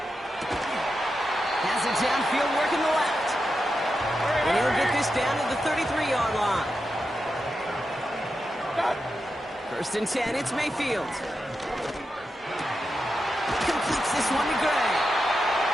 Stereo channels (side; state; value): both; normal; correlation 0.88